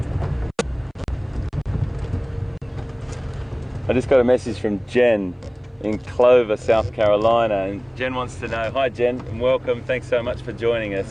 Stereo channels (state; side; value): identical; both; correlation 1.00